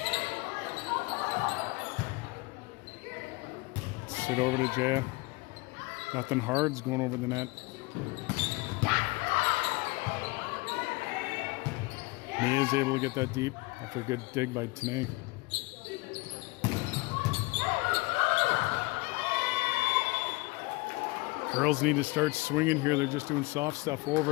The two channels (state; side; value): quieter; right; 24.6 dB